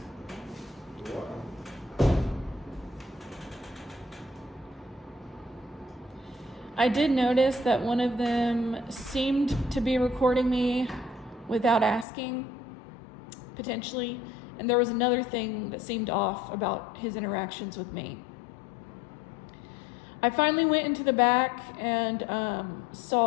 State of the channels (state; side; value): drops out; right; at 12.1 s